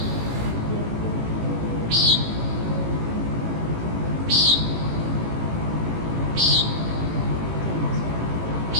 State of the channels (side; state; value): left; late; 18 ms